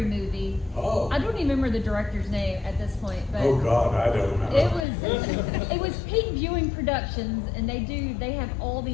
movie. Oh. I don't even remember the director's name at this point, but Oh God, I don't remember. it was Peak Viewing Productions, and they have all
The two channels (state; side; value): drops out; right; at 4.9 s